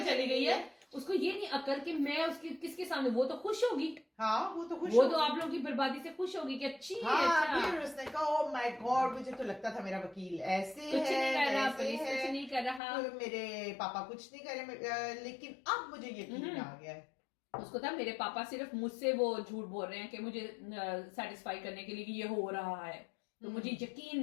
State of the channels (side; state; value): right; drops out; at 12.8 s